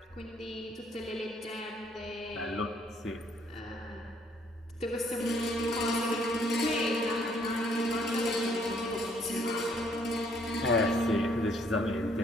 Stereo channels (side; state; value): both; normal; correlation 0.65